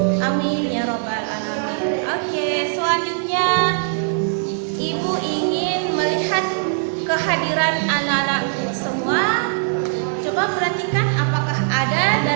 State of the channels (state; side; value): silent; left; digital silence